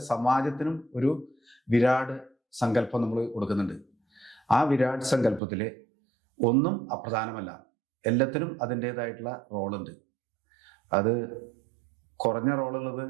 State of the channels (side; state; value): left; drops out; at 5.4 s